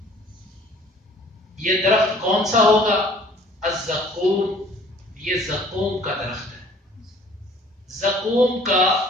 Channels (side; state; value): both; normal; correlation 0.53